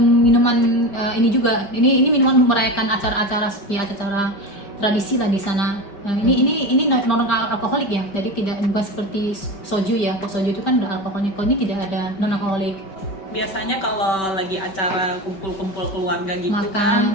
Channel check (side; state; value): right; late; 5.2 ms